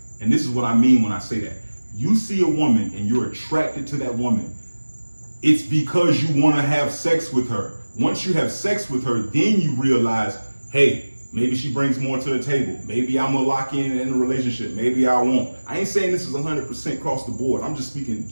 and this is what I mean when I say that. You see a woman and you're attracted to that woman. It's because you want to have sex with her. Once you have sex with her, then you realize, hey, maybe she brings more to the table. Maybe I'm gonna lock in a relationship. Maybe I won't. I ain't saying this is 100% across the board. I'm just speaking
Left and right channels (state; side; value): inverted; both; correlation -1.00